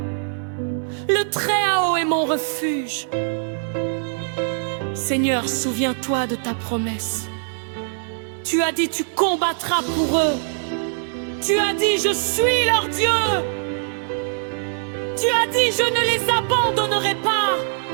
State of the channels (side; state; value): left; silent; 64 dB below the other